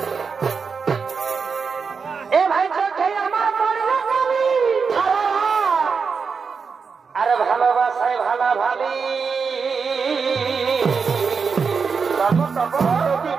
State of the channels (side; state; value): left; quieter; 5.4 dB